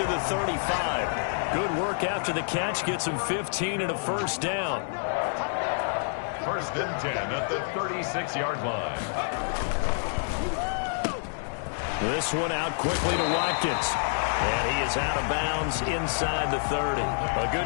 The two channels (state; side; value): silent; right; digital silence